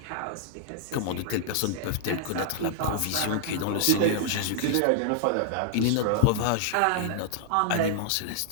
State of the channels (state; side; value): different; both; correlation 0.00